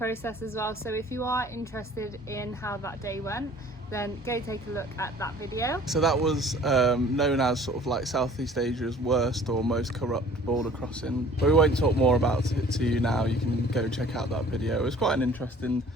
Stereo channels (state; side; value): normal; both; correlation 0.51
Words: as well, so if you are interested in how that day went, then go take a look at that video. So that was known as sort of like Southeast Asia's worst or most corrupt border crossing. But we won't talk more about it to you now. You can go check out that video. It was quite an interesting